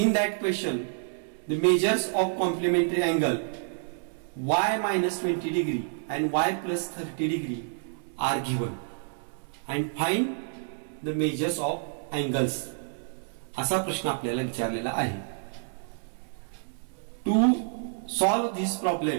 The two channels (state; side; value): silent; left; digital silence